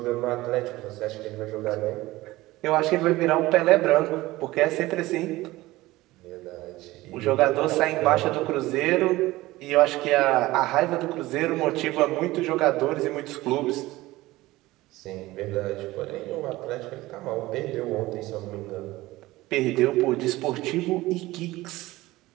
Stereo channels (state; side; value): quieter; left; 18.5 dB